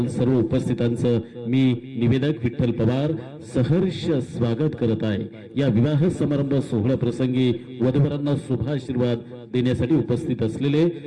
सर्व उपस्थितांचं मी निवेदक विठ्ठल पवार सहर्ष स्वागत करत आहे. या विवाह समारंभ सोहळ्या प्रसंगी वधूवरांना शुभाशीर्वाद देण्यासाठी उपस्थित असलेले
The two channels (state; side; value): identical; both; correlation 1.00